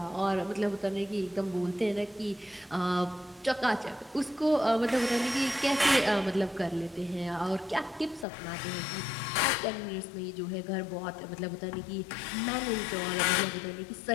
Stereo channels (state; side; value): drops out; right; at 8.2 s